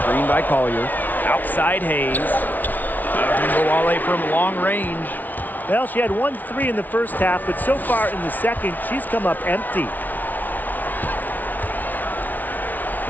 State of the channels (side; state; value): right; late; 0.081 ms